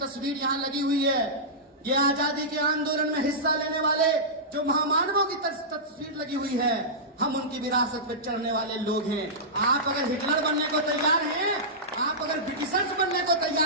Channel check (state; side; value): normal; both; correlation -0.15